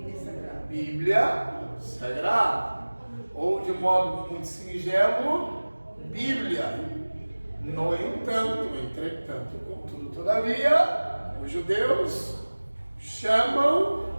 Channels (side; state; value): both; inverted; correlation -1.00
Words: Bíblia Sagrada. Ou, de modo muito singelo, Bíblia. No entanto, entretanto, contudo, todavia, os judeus chamam